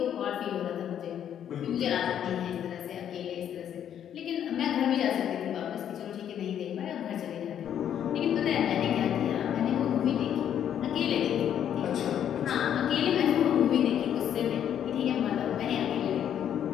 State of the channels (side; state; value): right; quieter; 9.7 dB